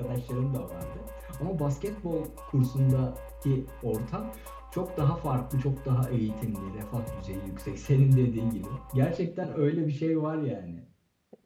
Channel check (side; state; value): both; identical; correlation 1.00